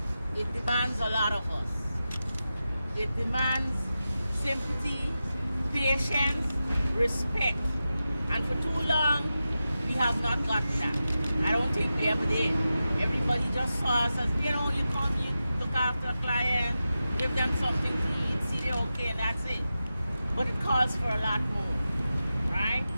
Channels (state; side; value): inverted; both; correlation -0.92